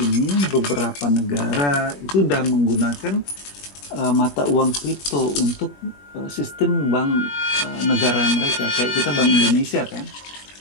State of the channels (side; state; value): right; late; 21 ms